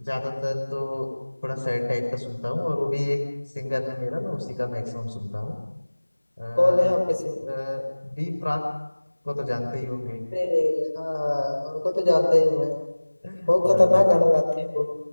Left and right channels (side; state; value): both; inverted; correlation -1.00